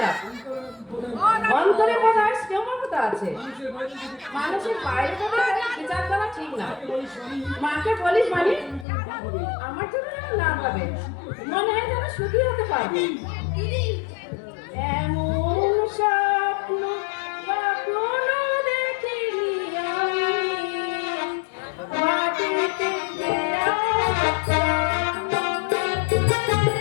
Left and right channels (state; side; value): drops out; right; at 8.8 s